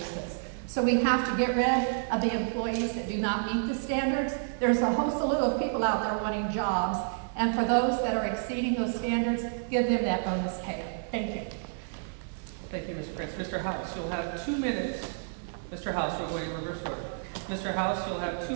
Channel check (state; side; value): silent; left; digital silence